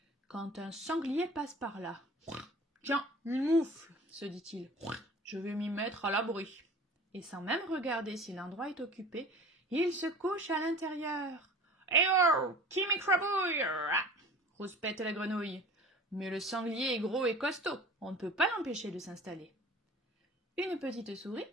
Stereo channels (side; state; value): both; normal; correlation 0.42